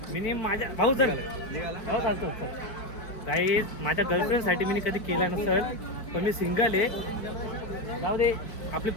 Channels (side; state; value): right; late; 4.6 ms